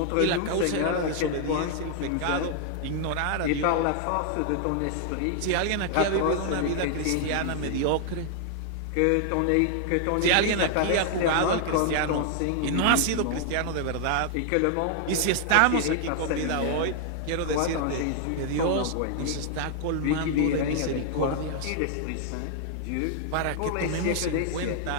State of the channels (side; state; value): both; different; correlation 0.00